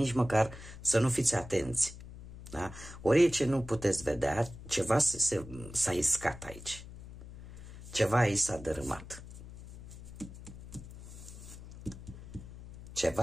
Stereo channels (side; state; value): left; noise; hum, 14 dB below the sound